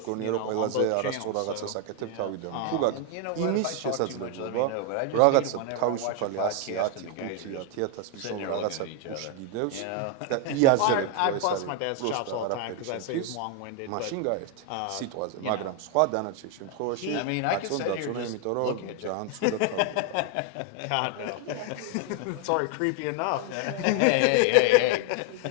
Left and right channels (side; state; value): both; different; correlation 0.00